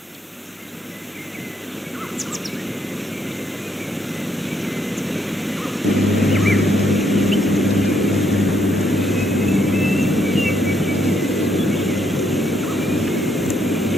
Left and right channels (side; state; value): both; normal; correlation 0.73